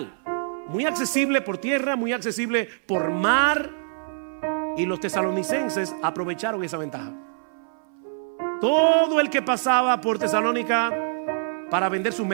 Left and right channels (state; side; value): silent; left; 59 dB below the other